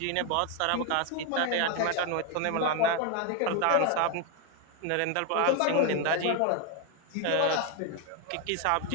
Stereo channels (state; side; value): different; both; correlation 0.01